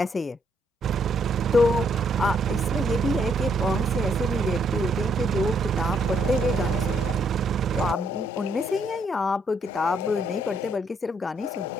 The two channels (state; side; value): normal; both; correlation 0.72